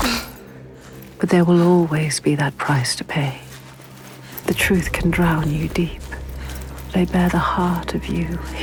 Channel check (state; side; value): identical; both; correlation 1.00